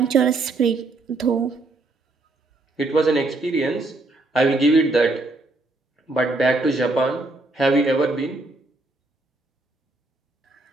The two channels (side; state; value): left; quieter; 3.0 dB